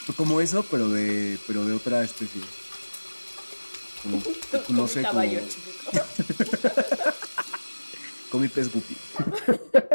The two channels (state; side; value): inverted; both; correlation -1.00